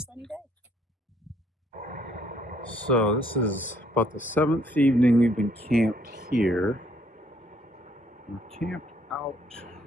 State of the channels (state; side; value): normal; both; correlation 0.66